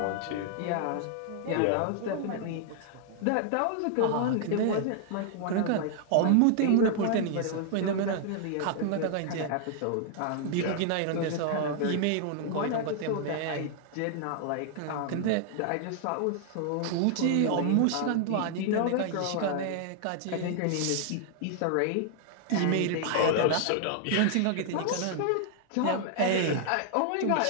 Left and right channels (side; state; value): both; different; correlation 0.00